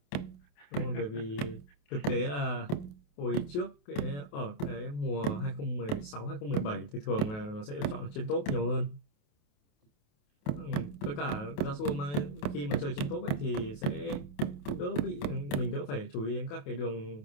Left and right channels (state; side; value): late; right; 27 ms